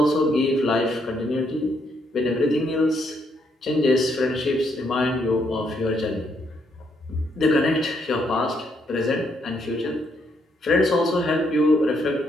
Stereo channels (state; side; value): normal; both; correlation 0.74